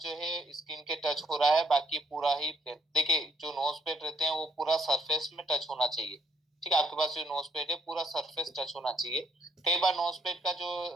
जो है स्किन के टच हो रहा है, बाकी पूरा ही। देखिए जो नोज पैड रहते हैं वो पूरा सरफेस में टच होना चाहिए। ठीक है, आपके पास जो नोज पैड है पूरा सरफेस टच होना चाहिए। कई बार नोज पैड का जो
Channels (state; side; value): normal; both; correlation 0.68